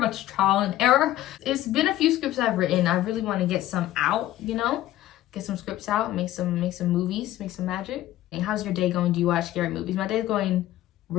trial and error. It's been a few scripts I've written. I really want to get some out, you know, get some scripts out, make some movies, make some magic. And how's your day going? Do you watch scary movies? My day's going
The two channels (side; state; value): right; quieter; 14.3 dB